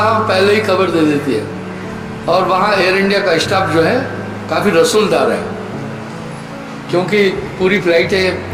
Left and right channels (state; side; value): identical; both; correlation 1.00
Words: पहले ही खबर दे देती है। और वहाँ एयर इंडिया का स्टाफ जो है काफ़ी रसूलदार है, क्योंकि पूरी